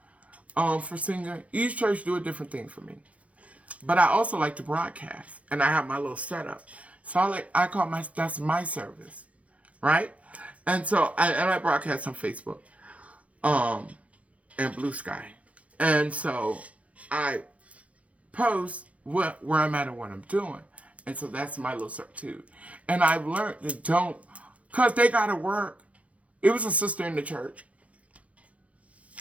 For singing. Each church do a different thing for me. But I also like to broadcast. And I have my little setup. So I call that's my service. Right? And so I broadcast on Facebook. And Blue Sky. And so I post where I'm at and what I'm doing. And so that's my little substitute. And I've learned to don't, because they got to work. It was a sister in the church.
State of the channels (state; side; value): late; left; 0.065 ms